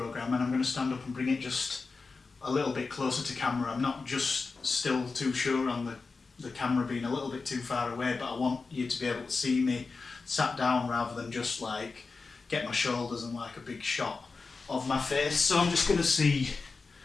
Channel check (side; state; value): right; quieter; 4.3 dB